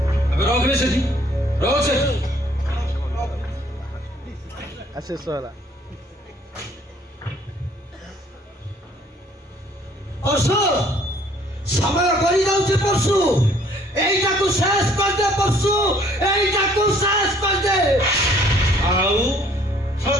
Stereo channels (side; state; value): both; normal; correlation 0.60